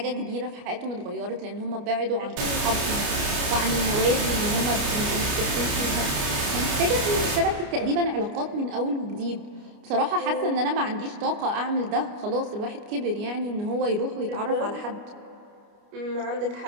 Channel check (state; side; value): late; left; 29 ms